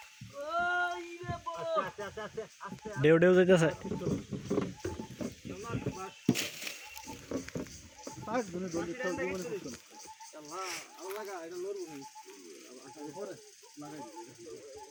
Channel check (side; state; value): both; identical; correlation 1.00